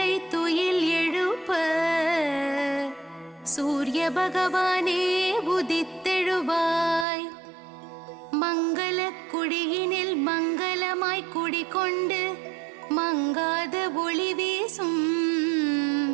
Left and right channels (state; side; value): drops out; left; at 7.1 s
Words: துயில் எழுப்ப சூரிய பகவானே உதித்தெழுவாய். மங்கள குடியினில் மங்களமாய் குடிகொண்டு மங்காத ஒளி வீசும்